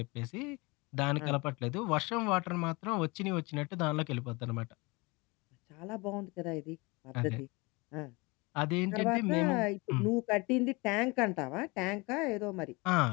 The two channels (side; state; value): right; quieter; 25.9 dB